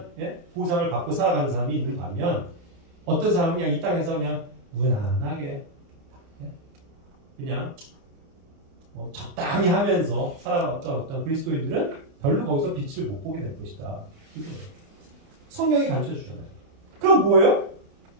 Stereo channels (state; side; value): late; left; 29 ms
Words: 보상을 받고 살아가는 사람이 있는 반면 어떤 사람은 그냥 이 땅에서 그냥 무난하게 그냥 뭐 적당히 하면서 살아왔던 어떤 그리스도인들은 별로 거기서 빛을 못 보게 될 것이다. 이거예요. 성경이 가르쳐주잖아요. 그럼 뭐예요?